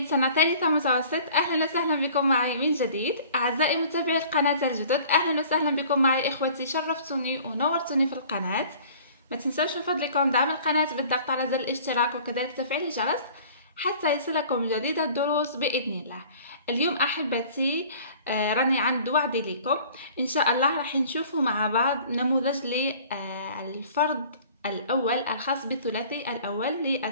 سنة ثالثة متوسط. أهلا وسهلا بكم معي من جديد. أعزائي متابعي القناة الجدد، أهلا وسهلا بكم معي إخوتي. شرفتوني ونورتوني في القناة. ما تنسوش من فضلكم دعم القناة بالضغط على زر الاشتراك وكذلك تفعيل الجرس حتى يصلكم جديد الدروس بإذن الله. اليوم أحبتي راني عند وعدي لكم إن شاء الله راح نشوفوا مع بعض نموذج للفرد الأول الخاص بالثلاثي الأول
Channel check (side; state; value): both; inverted; correlation -0.48